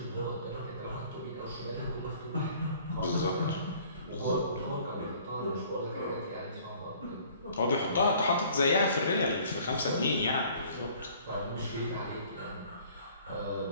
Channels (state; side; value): inverted; both; correlation -0.54